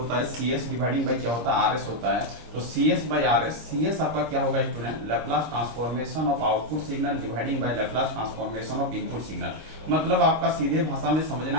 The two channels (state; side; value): late; left; 26 ms